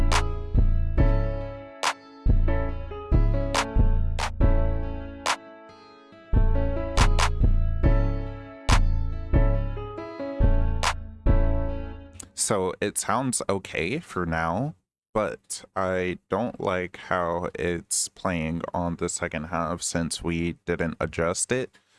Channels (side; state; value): both; identical; correlation 1.00